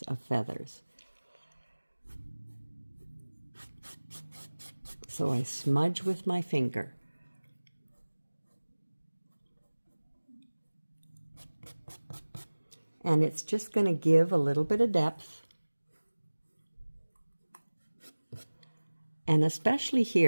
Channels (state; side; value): inverted; both; correlation -1.00